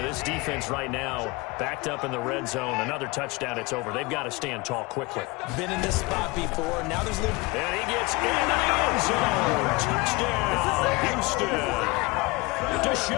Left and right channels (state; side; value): quieter; right; 24.7 dB